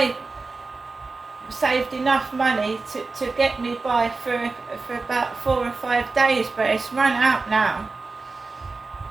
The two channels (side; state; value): left; quieter; 3.9 dB